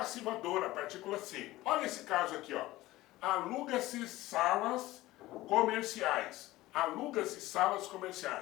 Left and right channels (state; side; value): quieter; right; 17.5 dB